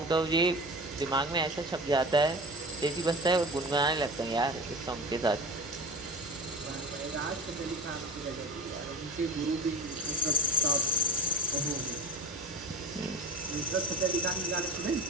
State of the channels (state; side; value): normal; both; correlation 0.33